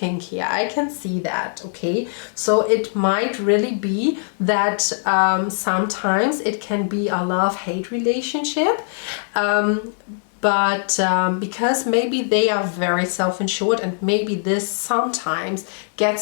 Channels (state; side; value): silent; right; digital silence